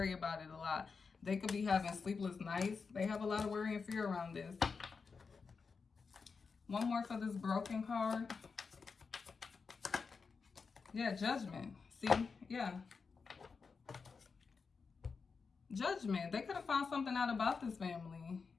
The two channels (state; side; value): quieter; right; 5.0 dB